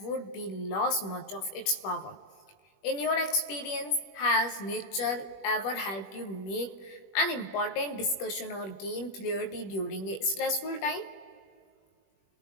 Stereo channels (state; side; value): late; right; 20 ms